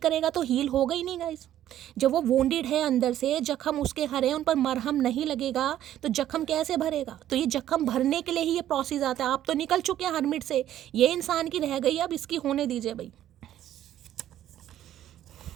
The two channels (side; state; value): left; quieter; 12.0 dB